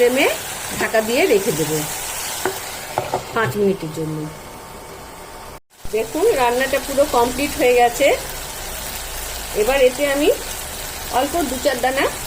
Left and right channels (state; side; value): identical; both; correlation 1.00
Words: ঢাকা দিয়ে রেখে দেব 5 মিনিটের জন্য। দেখুন রান্নাটা পুরো কমপ্লিট হয়ে গেছে। এবার এতে আমি অল্প 2-4 দানা